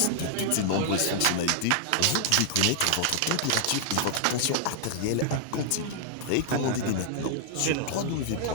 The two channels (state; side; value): different; both; correlation 0.00